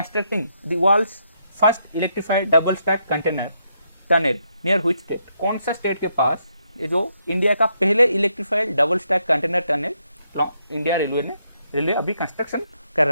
the world's first electrified double stack container tunnel near which state? कौन सा स्टेट के पास ये जो इंडिया का पहले electrified double stack container tunnel India railway अभी कंस्ट्रक्शन कर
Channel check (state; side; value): inverted; both; correlation -0.77